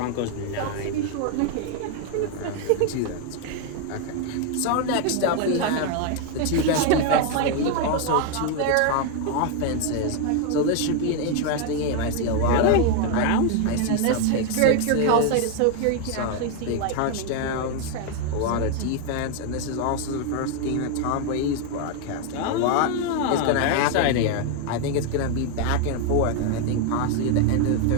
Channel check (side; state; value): both; different; correlation 0.01